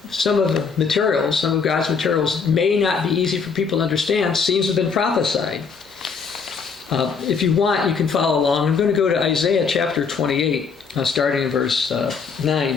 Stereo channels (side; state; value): right; quieter; 5.5 dB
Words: God's materials may not be easy for people to understand seems to have been prophesied. If you want, you can follow along. I'm going to go to Isaiah chapter 28, starting in verse